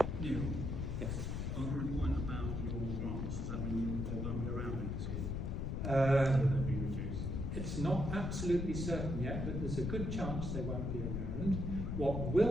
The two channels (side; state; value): left; noise; rumble, 2 dB below the sound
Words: Neil, Yes. on the point about your grants, does that mean they won't be around next year? They'll be reduced? It's not absolutely certain yet, but there's a good chance they won't be around. What